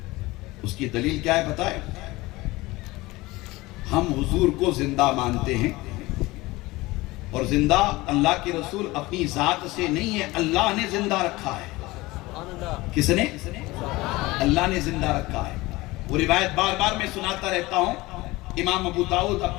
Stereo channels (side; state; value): right; quieter; 20.6 dB